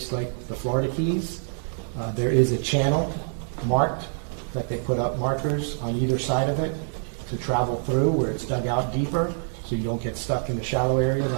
like the Florida Keys. There is a channel marked that they put up markers on either side of it to travel through where it's dug out deeper so you don't get stuck in the shallow areas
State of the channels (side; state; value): left; silent; digital silence